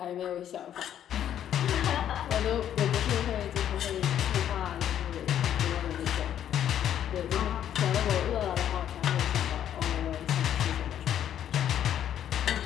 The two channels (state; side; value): quieter; right; 10.3 dB